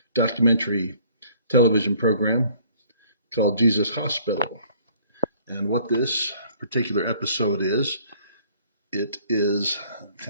documentary television program called Jesus Hospital. And what this particular episode is, it is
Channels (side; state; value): both; inverted; correlation -0.57